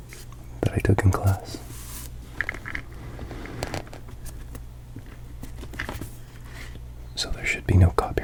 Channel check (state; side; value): identical; both; correlation 1.00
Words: that I took in class. So there should be no